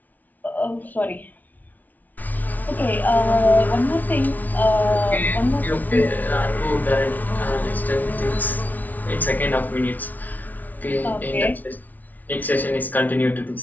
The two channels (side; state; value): right; late; 0.078 ms